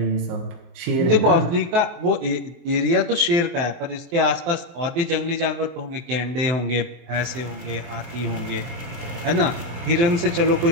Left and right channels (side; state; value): left; late; 23 ms